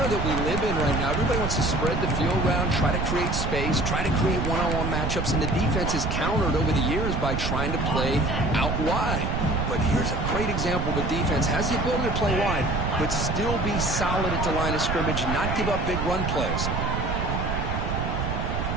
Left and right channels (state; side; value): noise; right; rumble, 1 dB below the sound